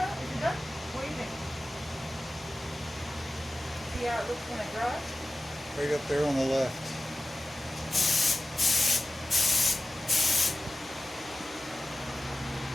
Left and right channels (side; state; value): both; normal; correlation 0.95